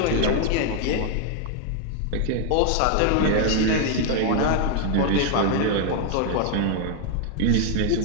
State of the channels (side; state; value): both; different; correlation 0.00